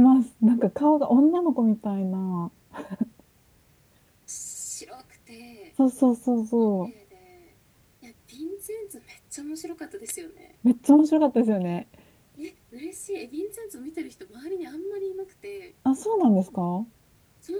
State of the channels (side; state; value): both; identical; correlation 1.00